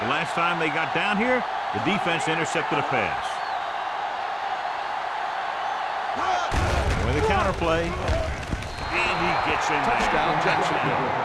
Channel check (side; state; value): both; identical; correlation 1.00